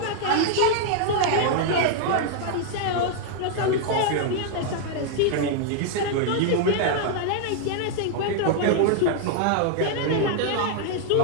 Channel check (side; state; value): both; different; correlation 0.00